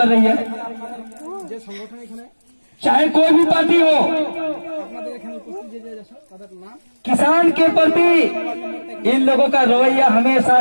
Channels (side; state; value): both; inverted; correlation -1.00